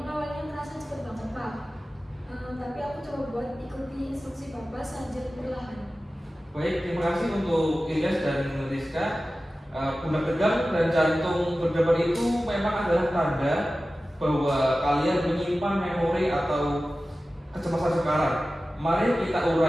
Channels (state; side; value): normal; both; correlation 0.95